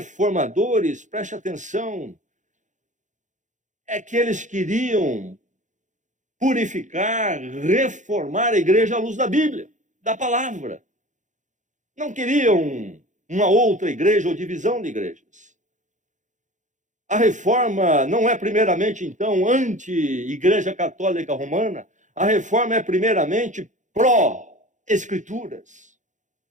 preste atenção, é que eles queriam purificar, reformar a igreja à luz da Bíblia, da palavra. Não queriam uma outra igreja ou divisão de igrejas. A reforma não é primeiramente, então, anti-igreja católica romana. A reforma é primeiramente pró-escrituras.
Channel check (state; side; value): late; left; 0.36 ms